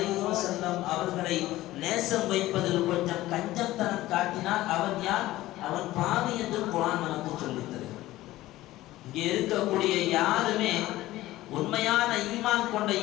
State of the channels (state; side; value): quieter; right; 16.4 dB